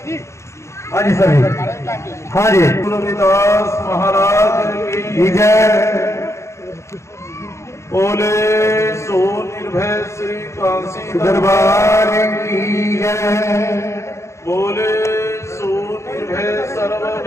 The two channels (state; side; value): late; right; 0.14 ms